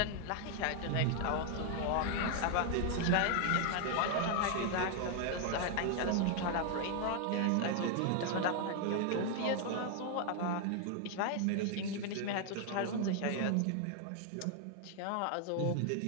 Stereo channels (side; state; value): both; different; correlation 0.00